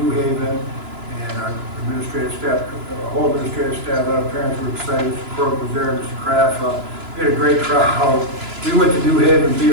Haven, and our administrative staff, whole administrative staff, a lot of parents were excited. Mr. Corbett was there, Mr. Kraft. We had a great crowd. We went to New Haven, beat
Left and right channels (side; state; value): left; late; 2.9 ms